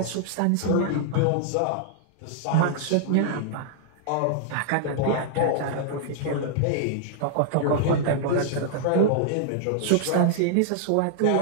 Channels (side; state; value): both; different; correlation -0.01